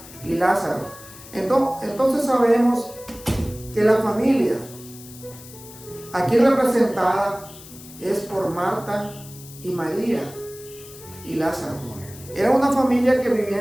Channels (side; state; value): left; noise; hiss, 18 dB below the sound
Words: y Lázaro. Entonces sabemos que la familia aquí representada es por Marta y María y Lázaro. Era una familia que vivía